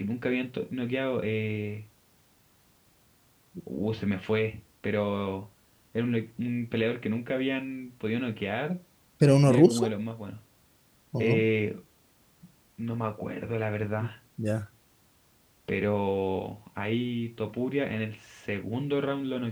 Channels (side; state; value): both; identical; correlation 1.00